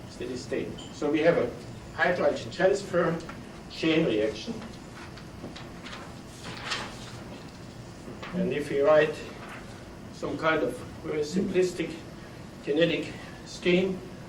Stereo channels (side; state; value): both; identical; correlation 1.00